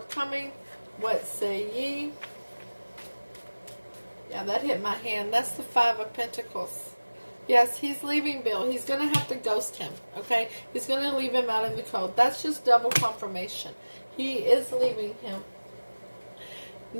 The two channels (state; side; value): inverted; both; correlation -1.00